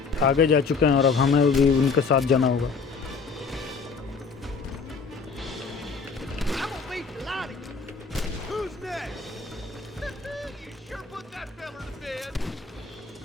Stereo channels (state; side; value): quieter; right; 5.0 dB